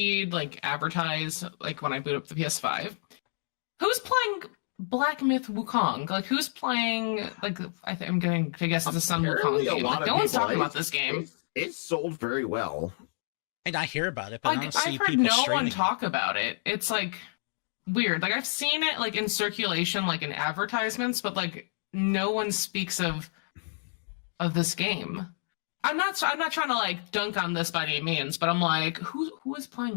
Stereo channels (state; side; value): silent; right; digital silence